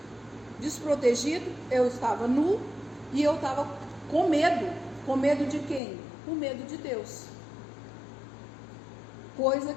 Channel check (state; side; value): drops out; right; at 5.8 s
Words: desprotegido, eu estava nu e eu estava com medo. Com medo de quem? Com medo de Deus. Coisa